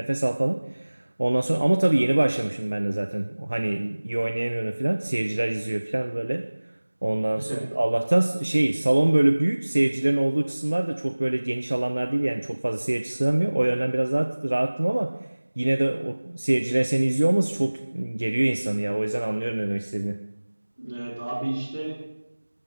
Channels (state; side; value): inverted; both; correlation -1.00